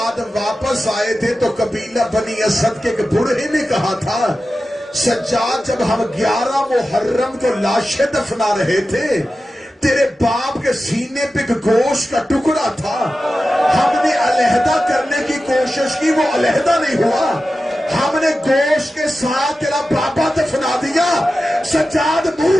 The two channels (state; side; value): normal; both; correlation 0.93